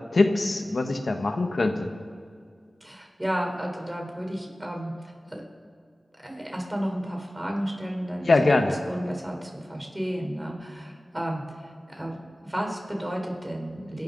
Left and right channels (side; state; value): both; normal; correlation 0.97